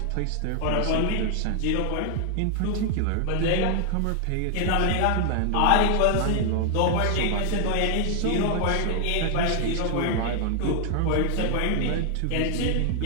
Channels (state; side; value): different; both; correlation 0.00